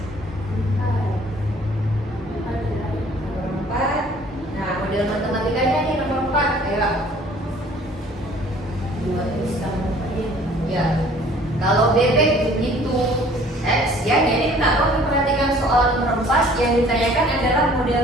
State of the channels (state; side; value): normal; both; correlation 0.54